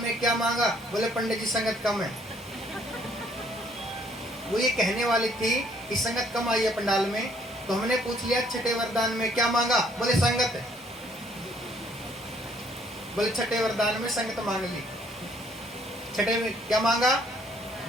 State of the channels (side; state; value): both; normal; correlation 0.64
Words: क्या मांगा। बोले पंडित जी संगत कम है। वो ये कहने वाली थी कि संगत कम आई है पंडाल में, तो हमने पूछ लिया छठे वरदान में क्या मांगा। बोले संगत है। बोले छठे वरदान में संगत मांग ली। छठे में क्या मांगा?